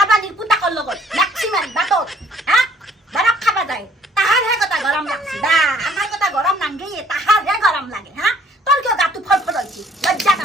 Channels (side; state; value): both; normal; correlation 0.59